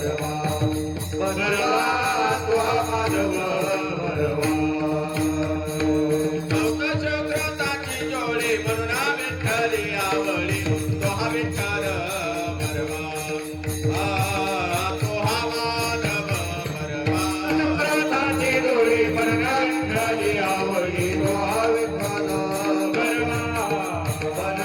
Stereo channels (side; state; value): both; identical; correlation 1.00